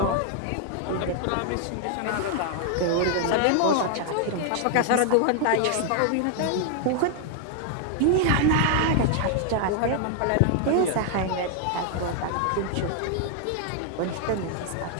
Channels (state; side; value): different; both; correlation 0.00